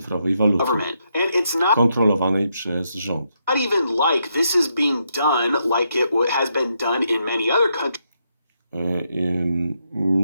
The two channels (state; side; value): inverted; both; correlation -0.79